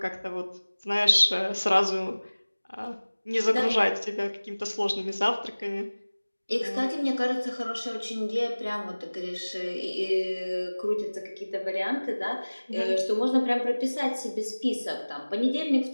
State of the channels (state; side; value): inverted; both; correlation -1.00